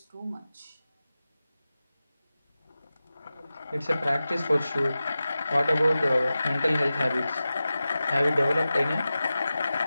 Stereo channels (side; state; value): both; inverted; correlation -0.94